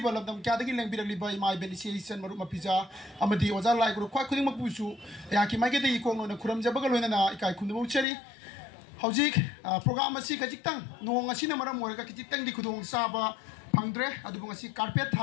लमदम क्यादगी लेंबिरलिबा EMI बेनिसिएशन मरु मपिजा अमदि ओजा लाइगुरु ख्वाइ खुदिंग मपुसु याकि माइगेदे इकोंगनो खुरमजबगा लोइनना इकाय खुनबु उचरी हौजिक प्रोग्राम असी खजिक्तंग नोंग असिना मरम ओरगा खजिक्तंग दि खुदोंग साबा फंगद्रे अदुबंग असी कारपेट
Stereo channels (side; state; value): right; drops out; at 8.1 s